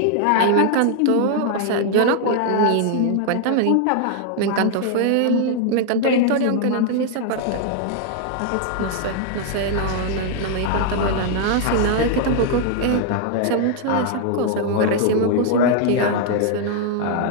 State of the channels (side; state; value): both; different; correlation 0.00